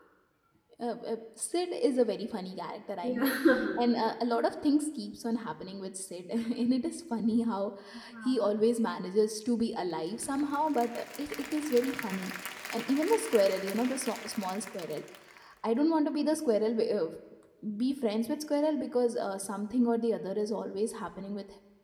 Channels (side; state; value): both; identical; correlation 1.00